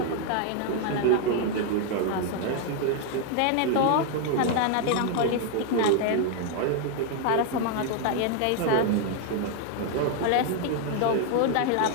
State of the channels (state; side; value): different; both; correlation 0.00